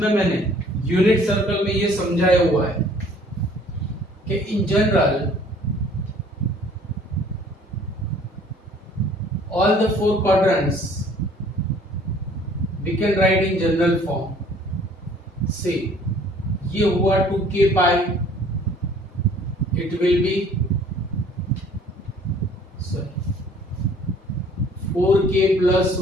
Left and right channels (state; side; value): normal; both; correlation 0.55